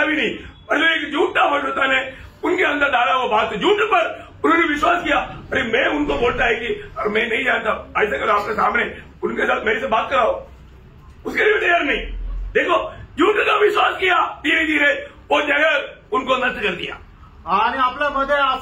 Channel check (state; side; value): identical; both; correlation 1.00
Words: भी नहीं, मतलब एक झूठा भविष्यवाणी ने उनके अंदर डाला वो बात, झूठ पर उन्होंने विश्वास किया। अरे मैं उनको बोलता है कि और मैं नहीं जानता, ऐसा करो आपके सामने उनके साथ मेरे से बात कराओ, उसके लिए तैयार नहीं। देखो, झूठ का विश्वास किया, धीरे धीरे वो जगह उनको नष्ट कर दिया। आणि आपल्यामध्ये